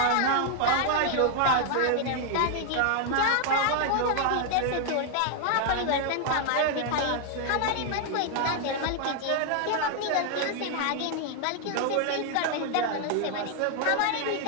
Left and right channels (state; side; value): different; both; correlation 0.00